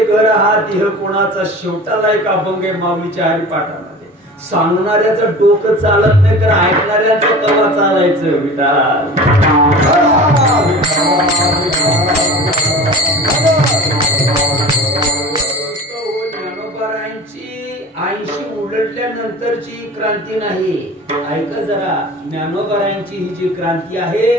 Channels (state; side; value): normal; both; correlation 0.37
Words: घर हा देह कोणाचा शेवटाला एक अभंग आहे माऊलीच्या हरिपाठामध्ये सांगणाऱ्याचं डोकं चालत नाही तर ऐकणाऱ्याचं कवा चालायचं विठाल ज्ञानोबारायांची 80 उलटल्यानंतरची क्रांती नाही ऐका जरा ज्ञानोबारायांची ही जी क्रांती आहे